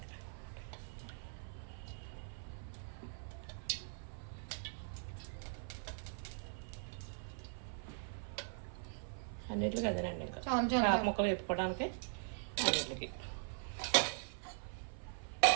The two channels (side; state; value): left; silent; 50 dB below the other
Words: అన్నిటికి అదేనండి. ఇంకా ముక్కలు వేపుకోవడానికి అన్నిటికి.